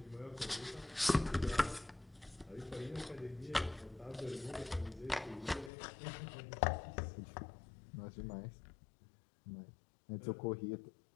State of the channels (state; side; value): drops out; right; at 5.7 s